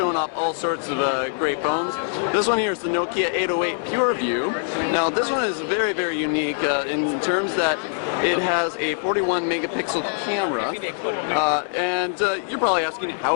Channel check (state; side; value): silent; right; digital silence